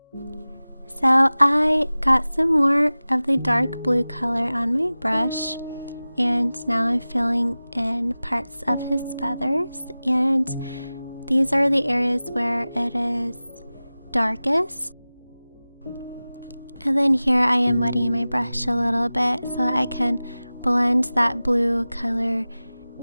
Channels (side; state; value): both; inverted; correlation -0.97